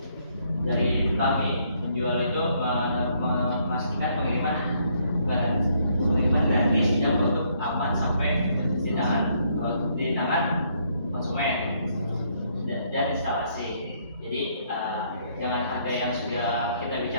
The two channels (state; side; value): inverted; both; correlation -0.69